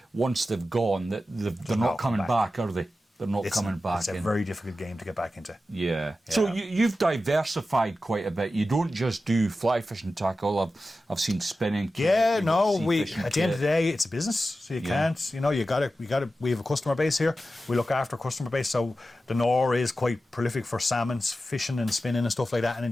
once they've gone, that they're not coming back, are they? They're not coming back. It's a very difficult game to get back into. Yeah. So you've diversified quite a bit. You don't just do fly fishing tackle. I've seen spinning. Yeah, no. We At the end of the day, it's a business, so you can't. You got to. We have a customer base here. We look after a customer base. So the Nor is quite prolific for salmon fishing and spinning and stuff like that. And in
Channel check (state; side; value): normal; both; correlation 0.93